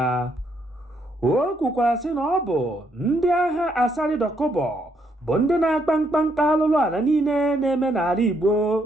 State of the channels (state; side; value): normal; both; correlation 0.74